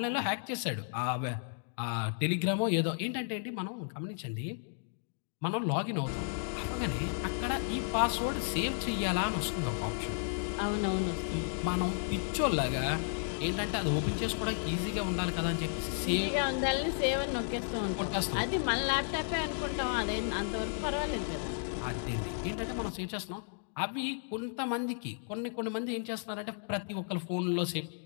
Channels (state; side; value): silent; right; digital silence